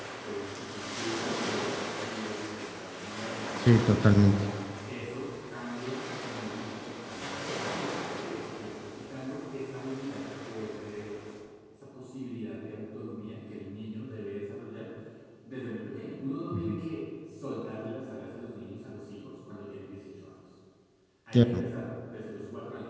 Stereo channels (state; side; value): identical; both; correlation 1.00